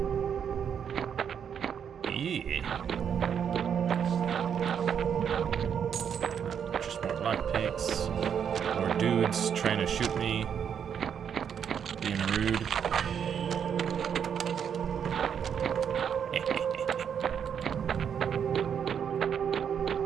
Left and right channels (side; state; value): left; quieter; 7.9 dB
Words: Just more lockpicks. More dudes trying to shoot me. Being rude.